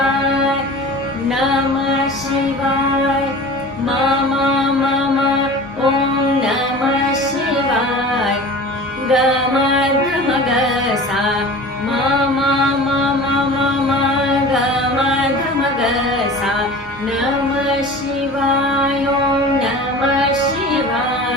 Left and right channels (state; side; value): normal; both; correlation 0.38